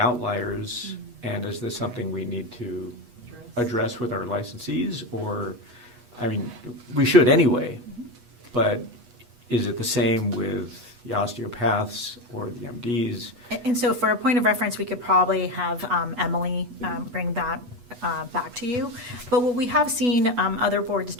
and is this something we need to address with our licensees, or, I mean, we should anyway, but is it the same with the osteopaths or the MDs? And so for a point of reference, we could probably have Emily bring that back to you. But what we have seen other boards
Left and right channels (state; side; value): late; left; 8.2 ms